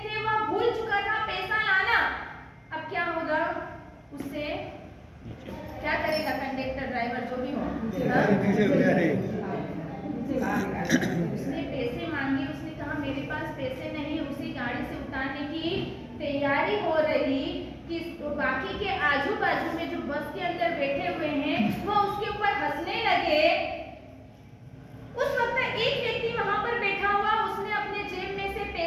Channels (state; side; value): identical; both; correlation 1.00